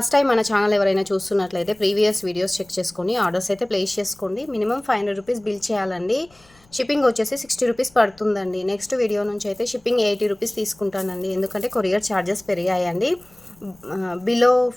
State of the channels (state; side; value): noise; left; rumble, 30 dB below the sound